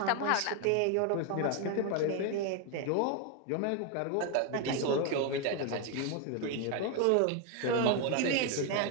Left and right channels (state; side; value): different; both; correlation 0.01